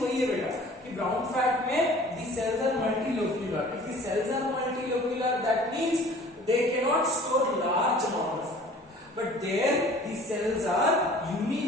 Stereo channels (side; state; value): both; normal; correlation 0.48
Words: वही है बेटा कि ब्राउन फैट में the cells are multilocular. If the cells are multilocular that means they cannot store large amount of fat, but there the cells are